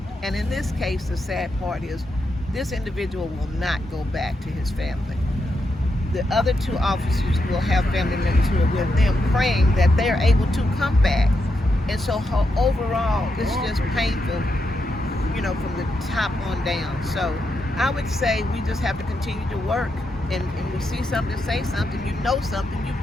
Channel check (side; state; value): both; normal; correlation 0.83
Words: And in this case, the sad part is this individual will not go back to his family. The other 2 officers will have family members who are with them, praying that they're able to come back. And so overall, it's just painful, from the top on down. So I would say we just have to continue to work. And we see something, say something, something, you've